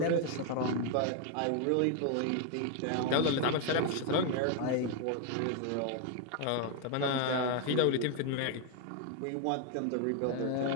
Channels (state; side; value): different; both; correlation 0.01